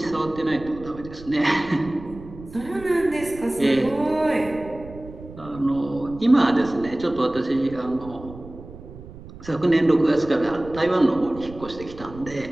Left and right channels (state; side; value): noise; right; rumble, 16 dB below the sound